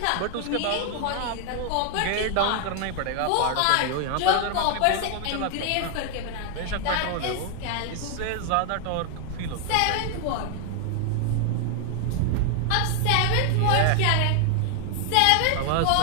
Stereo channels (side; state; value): both; different; correlation 0.00